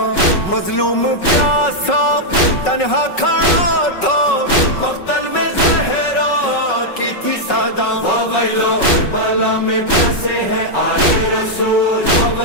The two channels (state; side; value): late; right; 5.4 ms